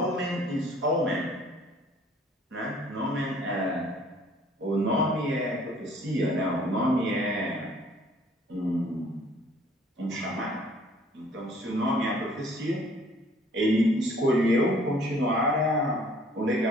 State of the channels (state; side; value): normal; both; correlation 0.57